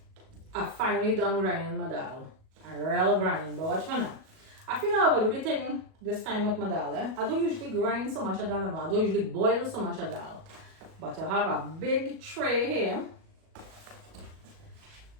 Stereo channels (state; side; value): late; left; 37 ms